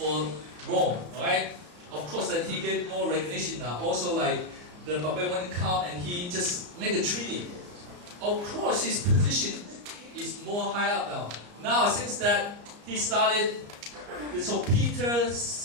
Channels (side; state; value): left; late; 34 ms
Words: Rome, right? Of course, then he get more recognition now. Also, like the barbarian come and he just make a treaty. Of course, his position is more high up now. Now, since that he started, so Peter's